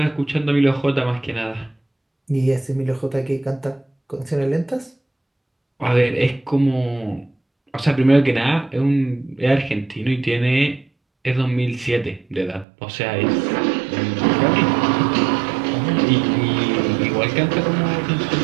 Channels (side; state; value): left; drops out; at 12.7 s